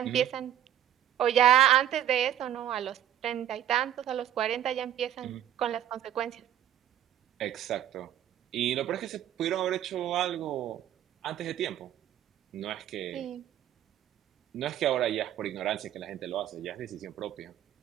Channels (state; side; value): quieter; left; 11.2 dB